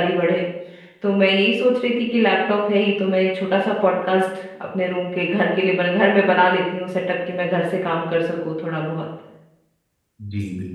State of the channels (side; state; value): both; identical; correlation 1.00